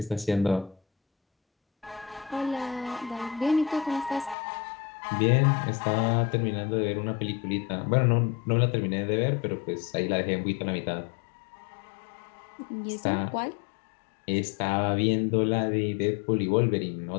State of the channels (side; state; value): right; drops out; at 4.4 s